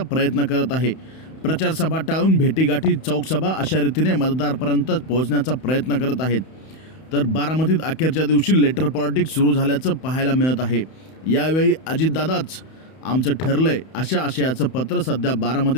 करत आहे. प्रचार सभा टाळून भेटीगाठी, चौकसभा अशा रीतीने मतदारापर्यंत पोहोचण्याचा प्रयत्न करत आहेत. तर बारामतीत अखेरच्या दिवशी लेटर पॉलिटिक्स सुरू झाल्याचं पाहायला मिळत आहे. यावेळी अजितदादाच आमचं ठरलंय अशा आशयाचं पत्र सध्या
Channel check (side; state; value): right; late; 31 ms